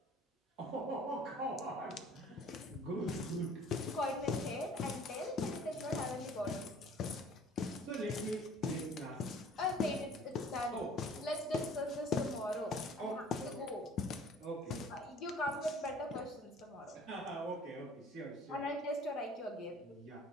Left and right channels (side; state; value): both; normal; correlation 0.51